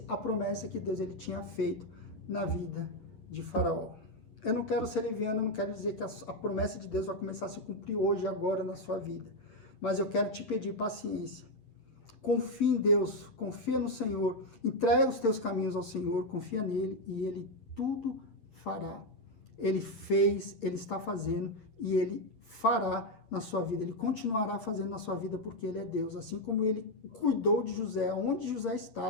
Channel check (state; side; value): late; right; 9.1 ms